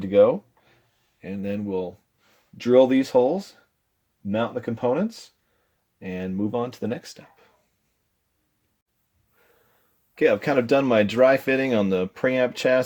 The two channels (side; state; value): both; identical; correlation 1.00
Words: to go, and then we'll drill these holes, mount the components, and move on to the next step. Okay, I've kind of done my dry fitting on the preamp